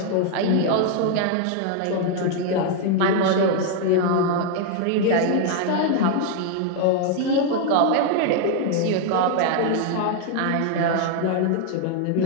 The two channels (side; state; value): both; different; correlation 0.00